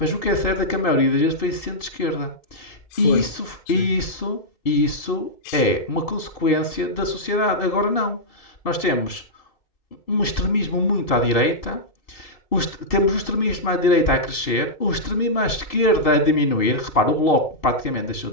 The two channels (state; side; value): late; right; 2.7 ms